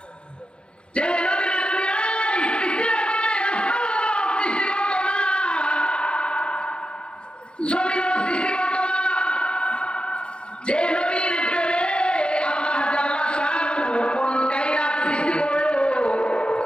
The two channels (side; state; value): right; late; 0.054 ms